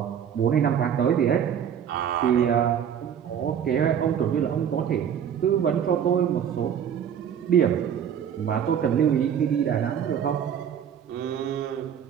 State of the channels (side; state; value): left; quieter; 8.7 dB